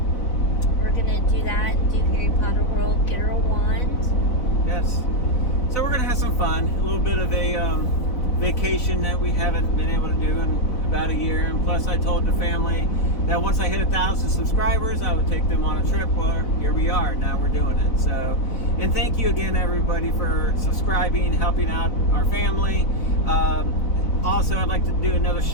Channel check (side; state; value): right; late; 4.0 ms